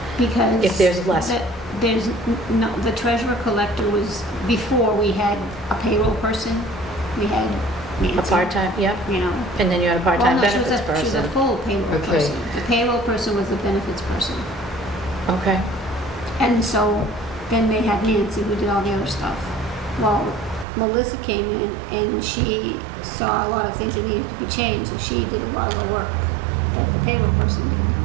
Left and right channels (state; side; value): drops out; left; at 20.7 s